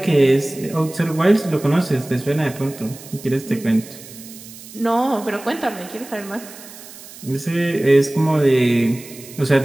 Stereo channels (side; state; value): right; noise; hiss, 17 dB below the sound